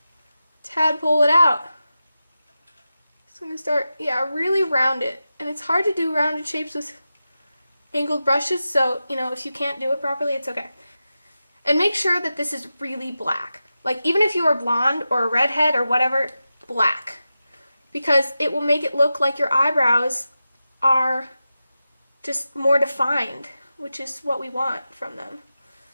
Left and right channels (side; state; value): both; inverted; correlation -0.92